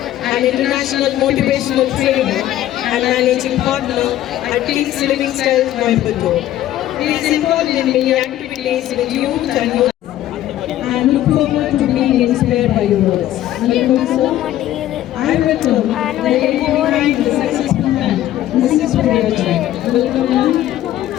and International Motivational Trainer and Managing Partner at King's Living Style, Coimbatore. He is involved in many activities with youth and look forward to being inspired by your words. Welcome, sir. I welcome the successful man, Mrs. Guriyajin. Welcome, ma'am.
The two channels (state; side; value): quieter; right; 13.3 dB